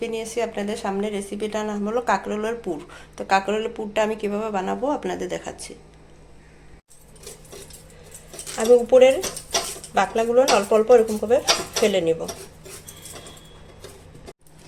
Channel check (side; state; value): both; identical; correlation 1.00